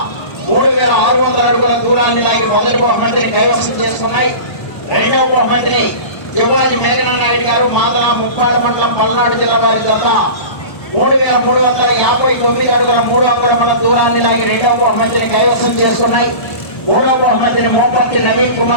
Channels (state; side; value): late; right; 1.2 ms